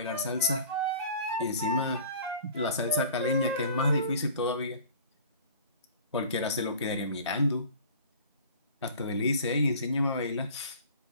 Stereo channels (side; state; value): both; inverted; correlation -0.44